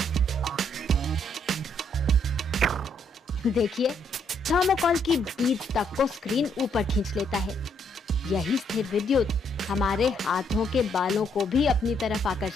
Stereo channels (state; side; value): normal; both; correlation 0.72